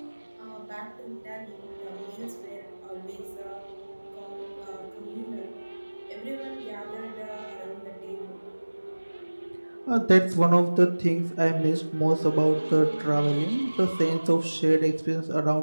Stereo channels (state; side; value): inverted; both; correlation -1.00